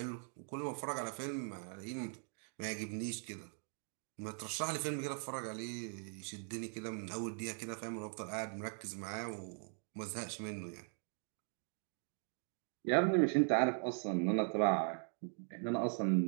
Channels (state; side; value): silent; left; 51 dB below the other